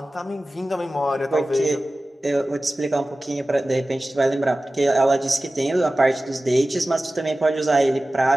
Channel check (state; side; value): normal; both; correlation 0.96